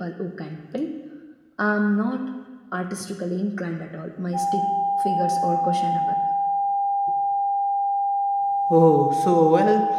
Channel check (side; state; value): both; identical; correlation 1.00